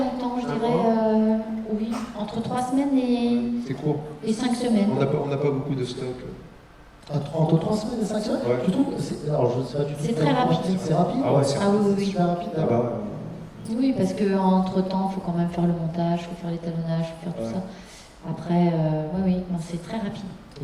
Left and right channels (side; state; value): both; identical; correlation 1.00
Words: je dirais, oui, entre 3 semaines C'est court. et 5 semaines. On n'a pas beaucoup de stock. Entre 3 semaines et 5 semaines Ouais. Tu trouves alors, je sais pas du tout. C'est très rapide. C'est rapide? Ah ouais, c'est Ah oui, oui, super rapide. Ah d'accord. bah, Oui, parce qu'entre temps, il faut quand même faire le montage, il faut faire l'étalonnage, il faut faire tout Ouais. ça. Après, oui, non, c'est très rapide.